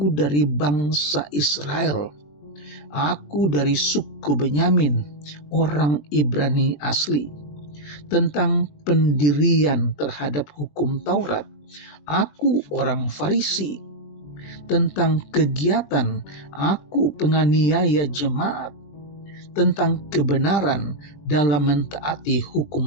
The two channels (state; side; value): late; right; 20 ms